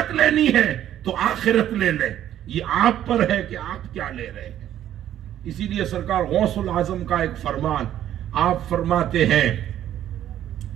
لینی ہے تو آخرت لے لیں. یہ آپ پر ہے کہ آپ کیا لے رہے ہیں. اسی لیے سرکار غوث العظم کا ایک فرمان, آپ فرماتے ہیں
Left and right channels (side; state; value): left; quieter; 11.5 dB